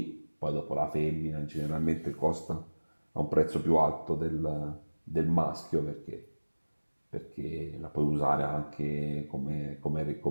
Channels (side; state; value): both; inverted; correlation -1.00